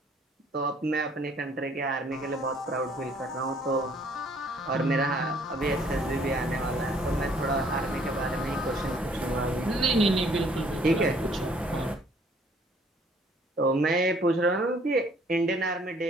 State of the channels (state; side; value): normal; both; correlation 0.61